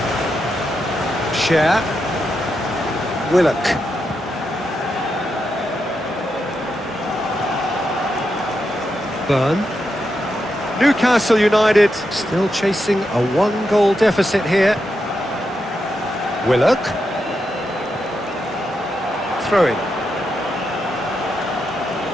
Cher. Willock. Burn. Newcastle United still chasing a one-goal deficit here. Willock. Throw-in.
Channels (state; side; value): normal; both; correlation 0.85